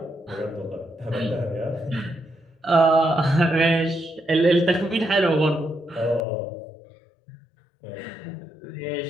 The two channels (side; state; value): right; drops out; at 6.2 s